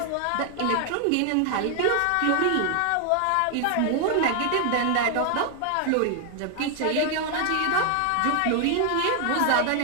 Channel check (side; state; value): both; different; correlation 0.00